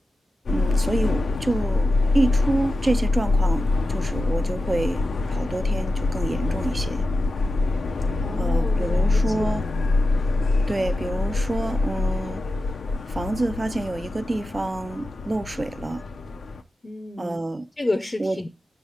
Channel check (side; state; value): both; normal; correlation 0.92